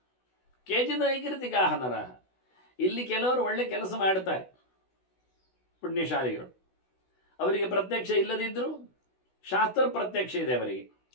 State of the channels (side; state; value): right; late; 16 ms